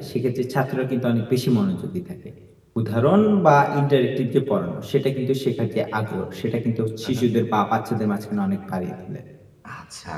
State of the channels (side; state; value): both; identical; correlation 1.00